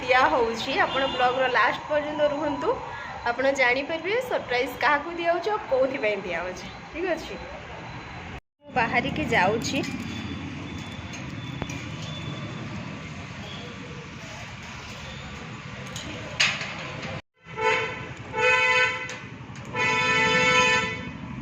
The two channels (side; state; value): both; identical; correlation 1.00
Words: होउछि आपण ब्लॉग रो लास्ट पर्यंत रुहंतु आपण जानि परबे सरप्राइज क्या दिया होउछि और कोथि पय दिया होउछि। ठीक अछि बाहरी के जाउछि